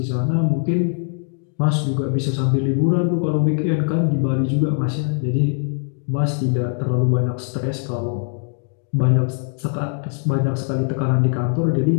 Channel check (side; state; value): right; silent; 58 dB below the other